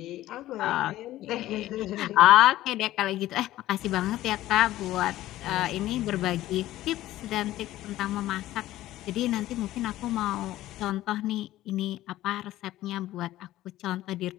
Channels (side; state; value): right; quieter; 15.0 dB